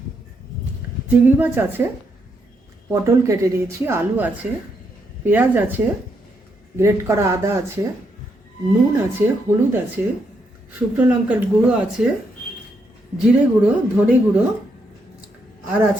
চিংড়ি মাছ আছে, পটল কেটে নিয়েছি, আলু আছে, পেঁয়াজ আছে, গ্রেট করা আদা আছে, নুন আছে, হলুদ আছে, শুকনো লঙ্কার গুঁড়ো আছে, জিরে গুঁড়ো, ধনে গুঁড়ো, আর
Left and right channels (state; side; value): normal; both; correlation 0.78